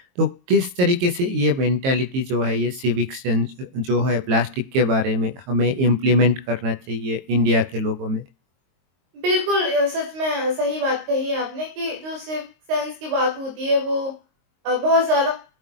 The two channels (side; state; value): left; late; 22 ms